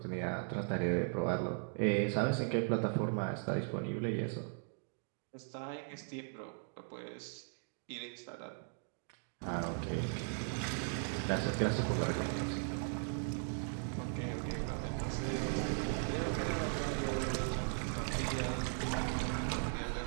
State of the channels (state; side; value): silent; left; 52 dB below the other